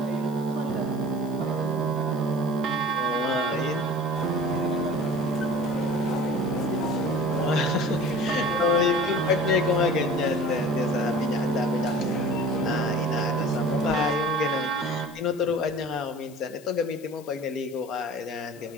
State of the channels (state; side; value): noise; left; hiss, 23 dB below the sound